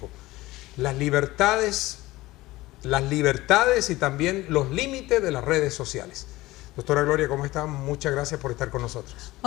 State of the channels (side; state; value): right; quieter; 18.7 dB